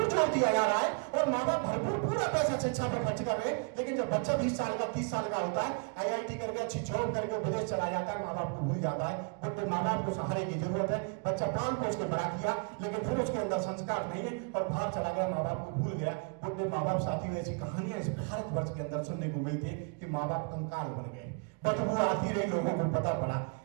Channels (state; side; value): quieter; left; 37.0 dB